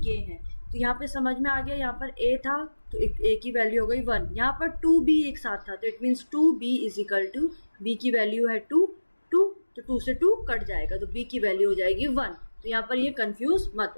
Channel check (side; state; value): both; inverted; correlation -1.00